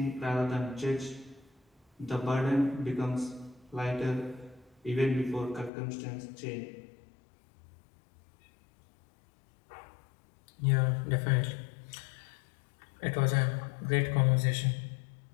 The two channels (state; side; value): drops out; right; at 5.7 s